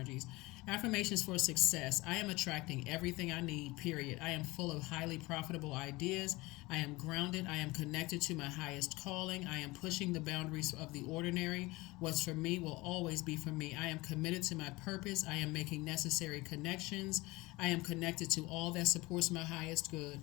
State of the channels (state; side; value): quieter; right; 21.8 dB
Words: Affirmations for success. I am attracting everything I need, period. I am full of highly profitable ideas. I am grounded. I am connected to my highest calling. I am pushing the boundaries of the ordinary. What's for me will always be for me. I am committed to my purpose. I am making necessary connections. I am connected to all that supports my highest good.